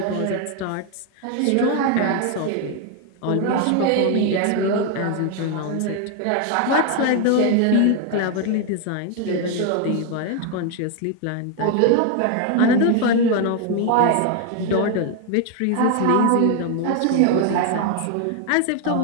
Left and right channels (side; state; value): both; different; correlation 0.01